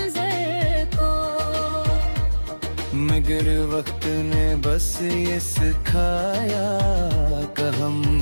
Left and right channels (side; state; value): both; inverted; correlation -1.00